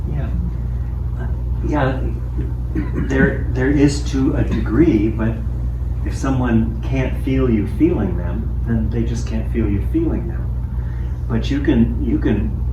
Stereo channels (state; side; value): identical; both; correlation 1.00